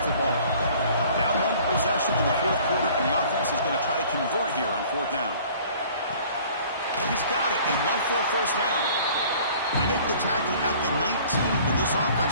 the ball. Down one possession in the fourth quarter, and the offense is going to try to convert here on fourth down. He's got it, enough for a first down. They make the tackle at the 19, but this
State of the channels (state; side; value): inverted; both; correlation -0.51